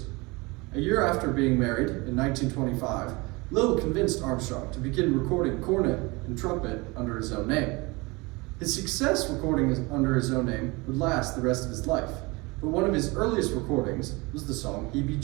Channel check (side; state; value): left; quieter; 25.1 dB